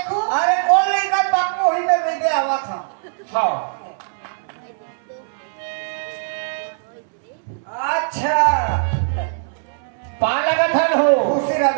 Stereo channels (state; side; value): silent; left; 65 dB below the other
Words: अरे कौन लेकर बापू वही में बैठे आवा था। हाँ अच्छा पा लगा था हो। खुशी रहा